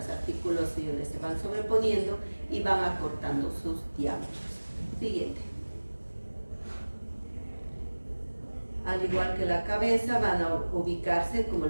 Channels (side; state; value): both; inverted; correlation -1.00